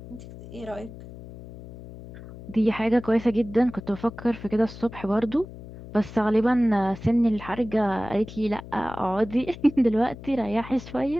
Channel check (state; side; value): noise; left; hum, 15 dB below the sound